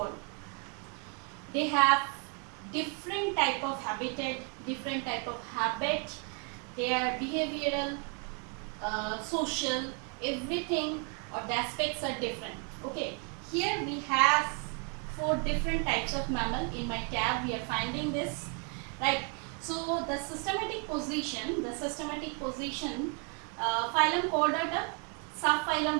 They have different type of habitat, different type of habit. They are behavioral, social, everything or the aspects are different. Okay, here we have 4 different types of mammal. In my tab we are finding this, right? So the systematic position, phylum Chordata, subphylum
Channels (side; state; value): left; quieter; 37.9 dB